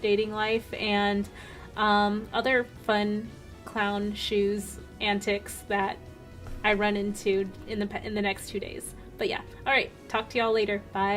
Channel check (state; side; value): identical; both; correlation 1.00